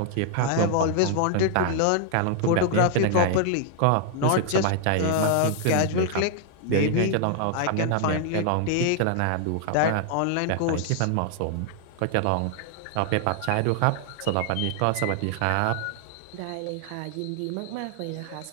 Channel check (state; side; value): different; both; correlation 0.00